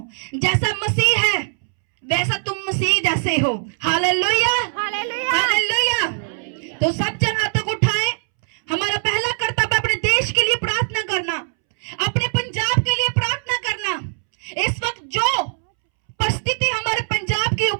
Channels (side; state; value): left; silent; 65 dB below the other